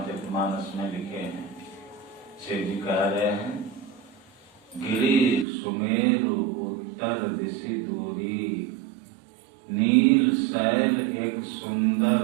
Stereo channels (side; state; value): left; drops out; at 5.5 s